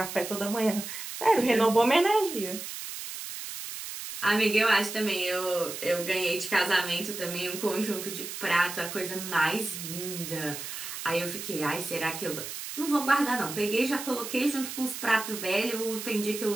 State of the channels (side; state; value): right; noise; hiss, 8 dB below the sound